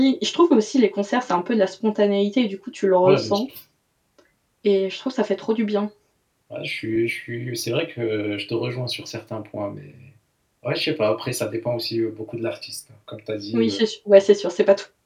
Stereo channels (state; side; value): identical; both; correlation 1.00